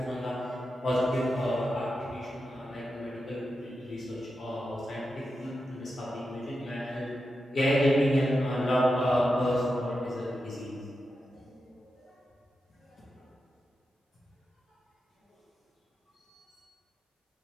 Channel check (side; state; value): both; normal; correlation 0.89